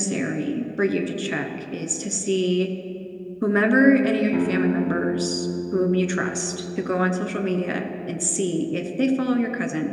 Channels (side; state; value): both; identical; correlation 1.00